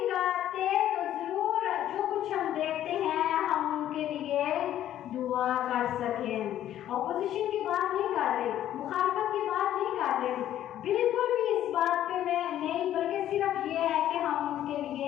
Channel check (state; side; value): quieter; right; 11.9 dB